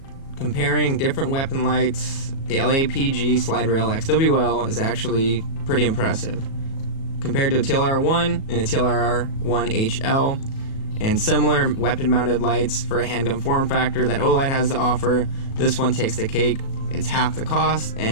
comparing different weapon lights, the LAPG Slide Rail XWL is actually pretty impressive. Compared to a TLR-1 and a TLR-1 HL, and similar weapon-mounted lights for a handgun form factor that Olight has to offer, this one takes the cake. It's half the cost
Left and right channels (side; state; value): right; late; 37 ms